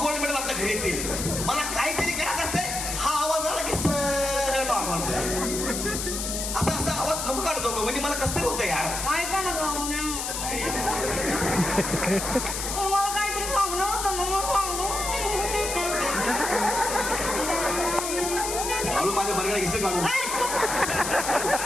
मेडल आपल्या घरी येतील. मला काहीतरी करायचं असतंय, हा आवाज आला की सगळं नॉर्मल होतं. असा आवाज नको काढतो गं, म्हणजे मला कसं तरी होतं यार. ऐका ना गं. तुम्हाला काहीतरी सांगणं होतं ना, मग सांगू. हळू माझ्या बरगडा घेशील काढून.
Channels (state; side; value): noise; left; hiss, 3 dB below the sound